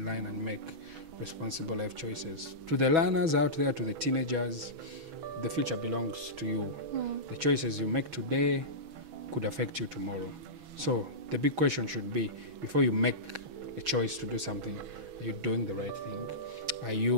line and make responsible life choices. To the learners out there, to the teenagers, the future belongs to you. The choices you make today could affect you tomorrow. So the big question should be, before you make a choice to do something, are you doing the right thing?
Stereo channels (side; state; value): left; late; 6.2 ms